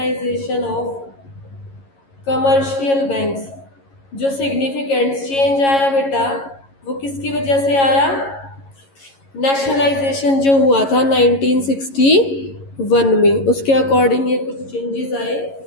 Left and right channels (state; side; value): late; right; 11 ms